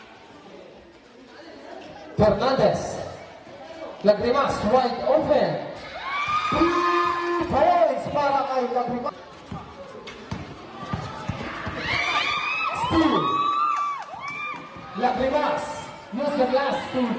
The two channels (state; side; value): identical; both; correlation 1.00